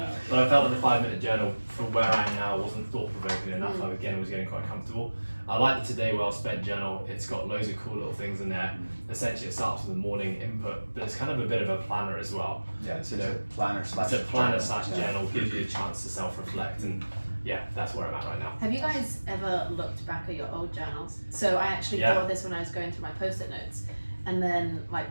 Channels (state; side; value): inverted; both; correlation -1.00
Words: But I felt that the 5-minute journal, for where I am now, wasn't thought provoking enough. Again, I was getting quite comfortable. I like the Today Well Spent journal. It's got loads of cool little things in there. Essentially, it starts with the morning input, but it's kind of a bit of a planner as well. Yeah, it's a planner slash. It's a planner journal. slash journal, gives you a chance to self-reflect, and yeah, that's where I'm at right now. Have you guys ever looked back at your old journals? So I actually thought of this when I was going through my post-it notes, and then like